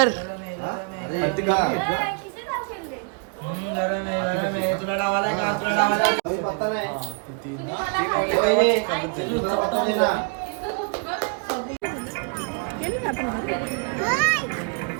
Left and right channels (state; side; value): quieter; left; 36.6 dB